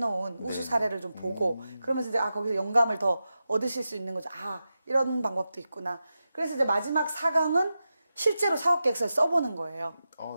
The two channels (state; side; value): inverted; both; correlation -0.91